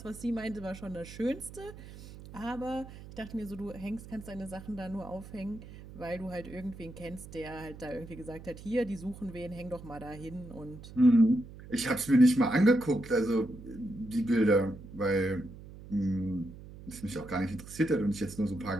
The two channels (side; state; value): right; noise; hum, 15 dB below the sound